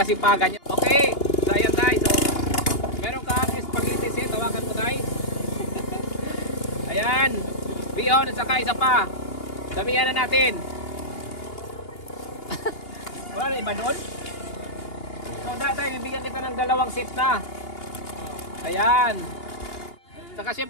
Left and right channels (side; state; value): right; late; 2.8 ms